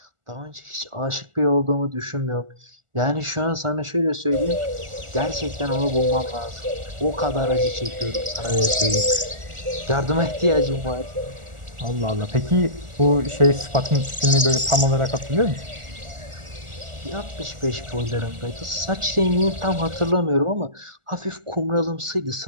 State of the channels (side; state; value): left; late; 1.4 ms